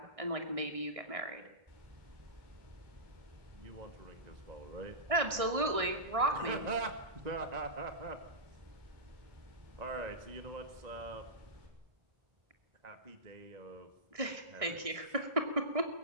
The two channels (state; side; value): late; left; 1.6 ms